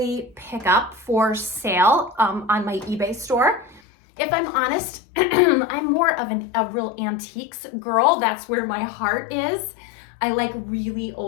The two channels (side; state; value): right; drops out; at 3.8 s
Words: pick up for sale on my eBay store. If I'm honest, I'm more of a real antiques girl. That's where my heart is. I like really